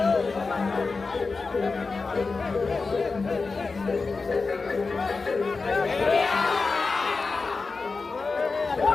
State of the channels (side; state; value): right; quieter; 4.2 dB